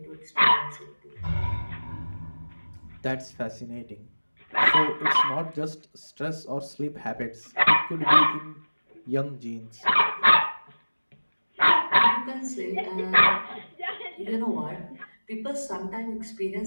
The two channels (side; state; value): both; inverted; correlation -1.00